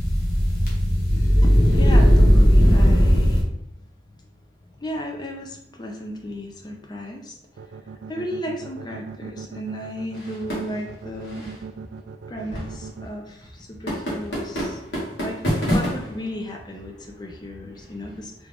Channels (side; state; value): both; normal; correlation 0.94